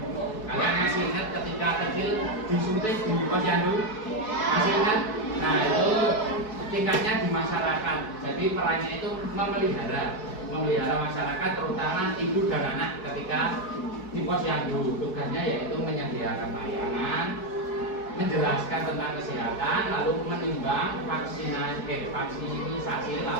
Kalian masih ingat ketika kecil disuntik di posyandu? Masih ingat? Nah, itu tingkatnya di masyarakat. Jadi perannya itu memelihara masyarakat, terutama ibu dan anak ketika di posyandu. Tugasnya yaitu menyediakan layanan, menjelaskan tentang kesehatan, lalu menimbang vaksinasi,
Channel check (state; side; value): late; right; 4.6 ms